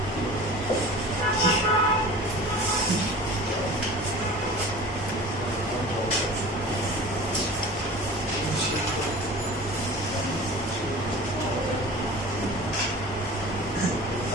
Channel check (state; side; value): normal; both; correlation 0.39